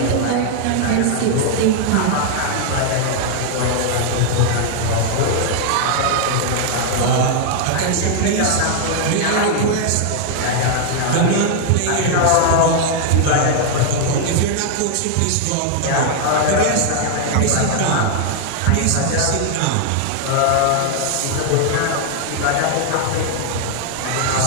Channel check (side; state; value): both; different; correlation 0.00